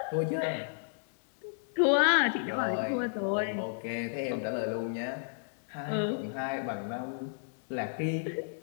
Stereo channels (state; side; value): silent; right; digital silence